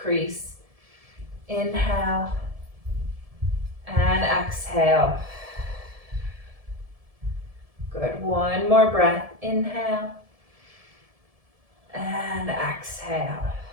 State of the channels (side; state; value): left; late; 1.7 ms